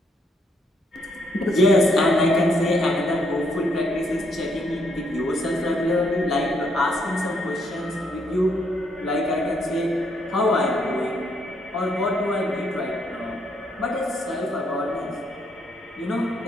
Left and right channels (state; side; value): normal; both; correlation 0.73